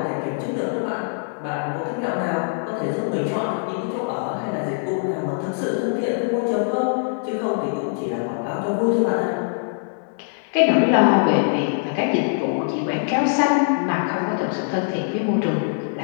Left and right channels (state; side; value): silent; right; digital silence